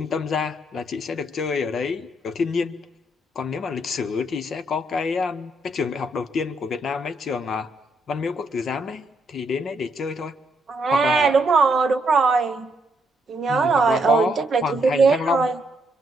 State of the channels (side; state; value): both; normal; correlation 0.75